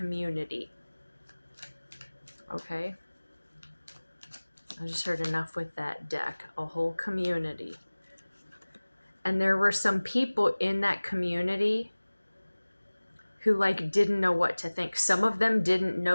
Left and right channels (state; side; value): inverted; both; correlation -1.00